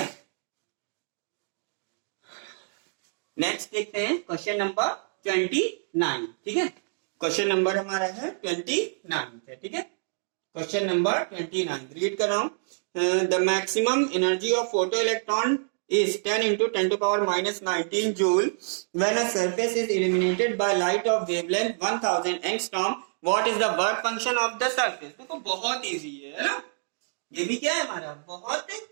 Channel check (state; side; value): silent; left; digital silence